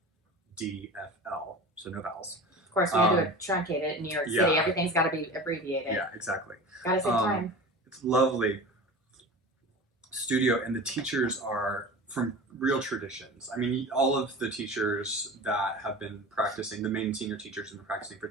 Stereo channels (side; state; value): both; normal; correlation 0.34